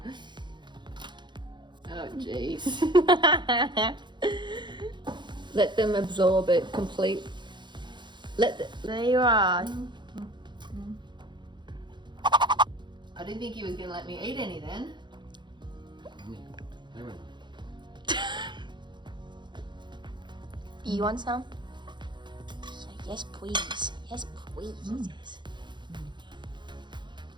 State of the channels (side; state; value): left; late; 0.22 ms